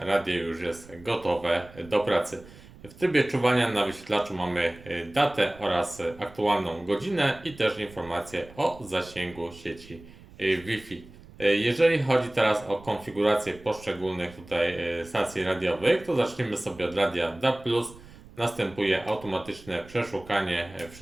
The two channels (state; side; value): noise; right; rumble, 21 dB below the sound